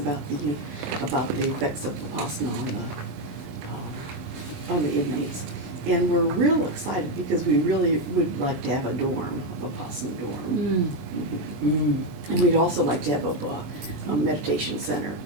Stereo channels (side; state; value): left; late; 23 ms